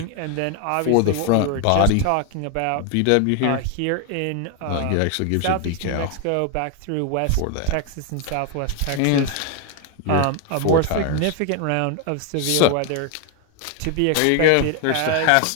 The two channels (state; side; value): different; both; correlation 0.01